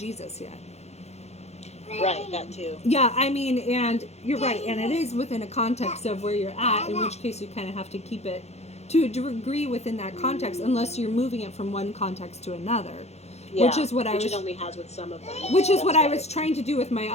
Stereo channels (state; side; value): late; right; 0.31 ms